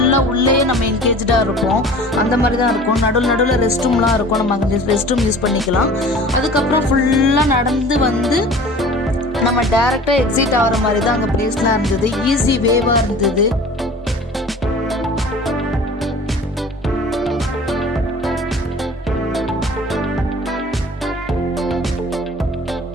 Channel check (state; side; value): normal; both; correlation 0.43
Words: உள்ளே நம்ம என்கேஜாக இருப்போம். அந்த மாதிரி தான் இருக்கும். நடுவில் ரெஸ்ட் ரூம்லாம் இருக்கும். நம்ம அங்கே ரெஸ்ட் ரூம் யூஸ் பண்ணிக்கலாம். அதுக்கப்புறம் ஃபுல்லாக நடந்து வந்து நம்ம டேரெக்டாக எக்ஸிட் ஆகிற மாதிரி தான் அங்கே பிளேஸ்லாம் இருந்தது. ஈஸி வேவாக இருந்தது.